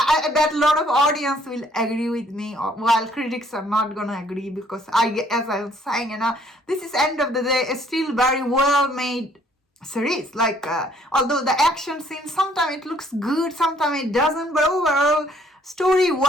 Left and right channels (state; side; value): normal; both; correlation 0.63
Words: I bet a lot of audience will agree with me, while critics are not gonna agree, because as I was saying, this is end of the day, it's still very well made series. Like, although the action scene, sometimes it looks good, sometimes it doesn't, but overall, story